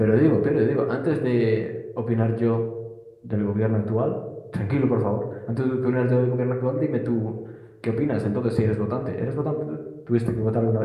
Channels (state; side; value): identical; both; correlation 1.00